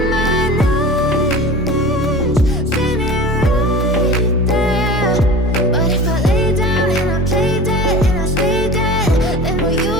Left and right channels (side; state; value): both; normal; correlation 0.36